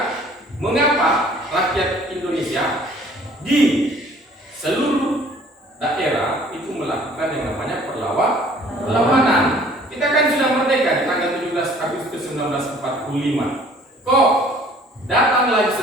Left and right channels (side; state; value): both; normal; correlation 0.54